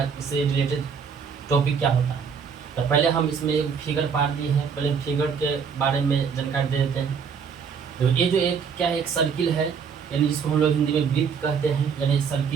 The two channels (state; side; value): quieter; left; 6.5 dB